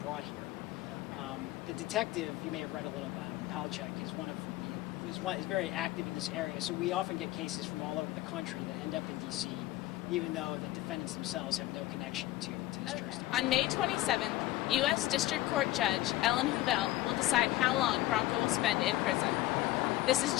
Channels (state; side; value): quieter; right; 16.4 dB